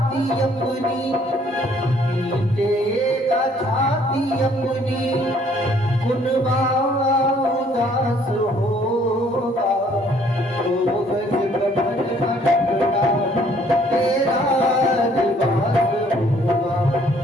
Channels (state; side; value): normal; both; correlation 0.62